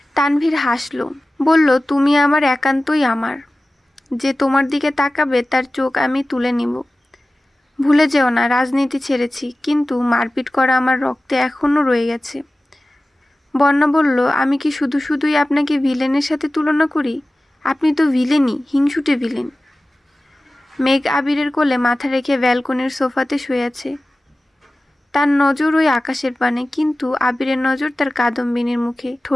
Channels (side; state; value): both; normal; correlation 0.96